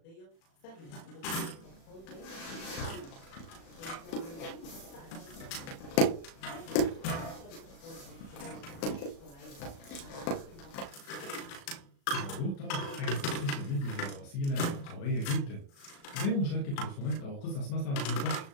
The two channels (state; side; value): late; right; 36 ms